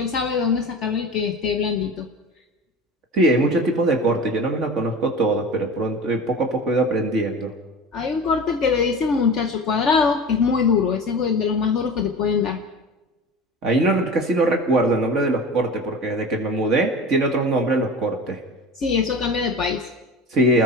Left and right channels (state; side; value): normal; both; correlation 0.34